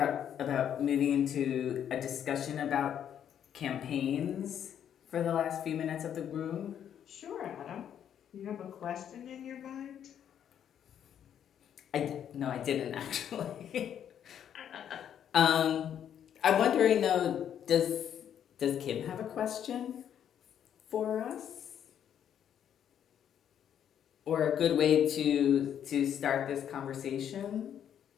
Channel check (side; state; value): right; quieter; 9.4 dB